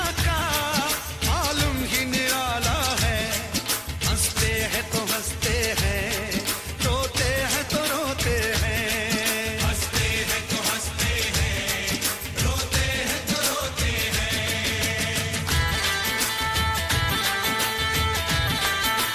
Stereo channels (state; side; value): identical; both; correlation 1.00